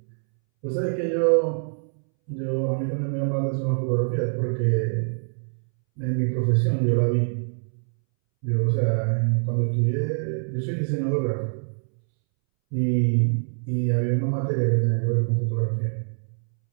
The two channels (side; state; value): left; silent; 62 dB below the other